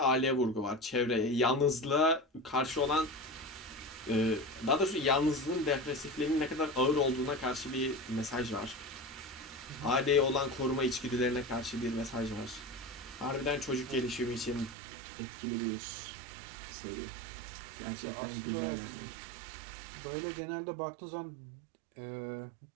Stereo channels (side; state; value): left; drops out; at 14.8 s